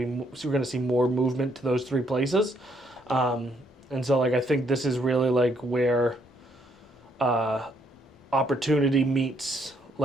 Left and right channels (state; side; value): normal; both; correlation 0.71